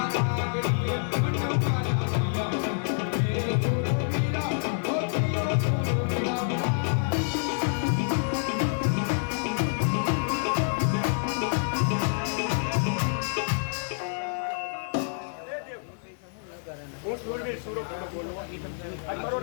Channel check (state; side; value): silent; right; digital silence